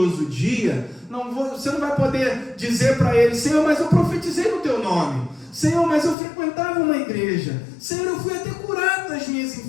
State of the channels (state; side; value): drops out; right; at 6.2 s